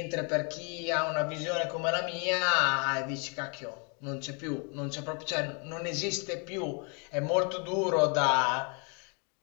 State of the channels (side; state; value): right; quieter; 36.0 dB